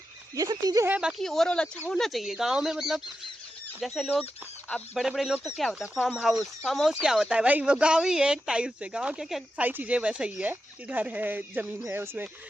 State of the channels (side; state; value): both; normal; correlation 0.89